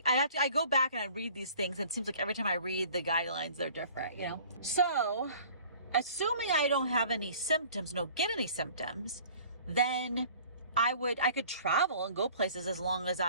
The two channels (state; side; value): inverted; both; correlation -0.49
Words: go back and I read these things and it seems like every time I read the guidelines, they're different, you know? So assuming I don't have any symptoms, don't get any symptoms, then I could travel and go places as long as